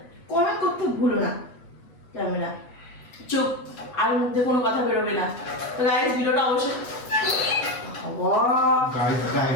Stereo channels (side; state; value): right; late; 8.1 ms